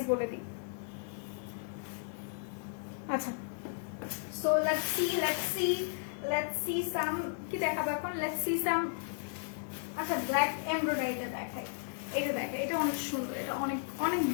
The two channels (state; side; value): silent; right; digital silence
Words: বলে দিই। আচ্ছা, সো লেটস সি সাম, কি দেখাবো এখন? Let's see some. আচ্ছা, ব্ল্যাক এমব্রয়ডারিটা দেখাই। এটা দেখে, এটা অনেক সুন্দর, এটা অনেক অনেক